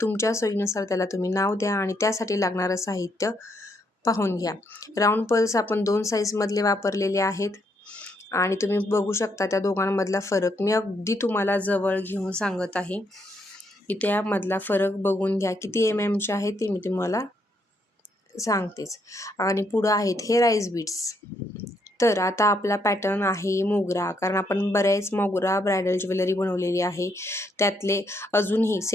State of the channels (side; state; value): both; normal; correlation 0.75